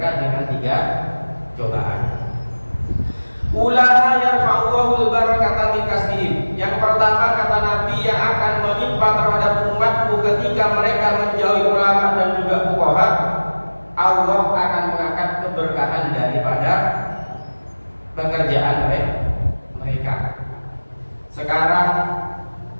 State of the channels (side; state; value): both; inverted; correlation -1.00